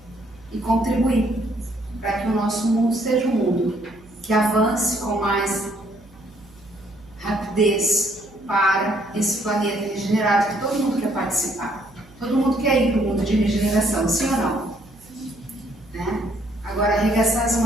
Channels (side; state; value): right; noise; hum, 26 dB below the sound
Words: e contribuir para que o nosso mundo seja um mundo que avance com mais rapidez para esse planeta regenerado, que todo mundo quer participar. Todo mundo quer ir para o mundo de regeneração, sim ou não? Né? Agora, arregaçar as